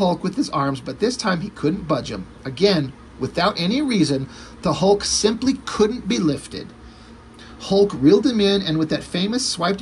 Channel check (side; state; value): both; identical; correlation 1.00